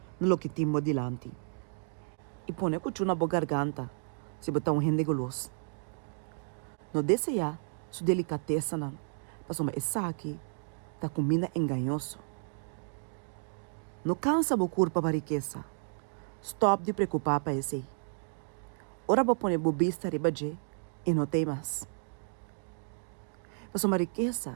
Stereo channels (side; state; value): left; silent; 56 dB below the other